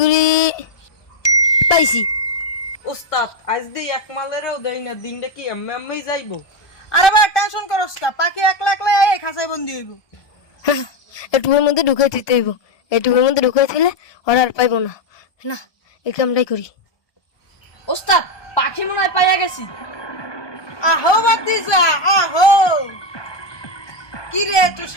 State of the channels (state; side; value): late; right; 1.2 ms